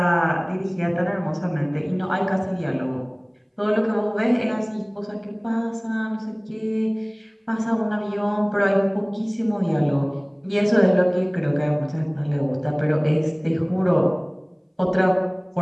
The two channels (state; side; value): identical; both; correlation 1.00